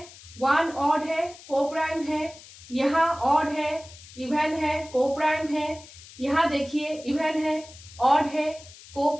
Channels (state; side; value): noise; left; hiss, 19 dB below the sound